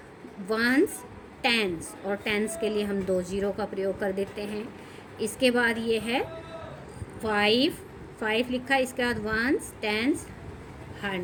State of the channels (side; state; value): both; identical; correlation 1.00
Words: वंस, टेंस, और टेंस के लिए हम 2 0 का प्रयोग कर देते हैं। इसके बाद ये है 5 लिखा, इसके बाद वंस, टेंस,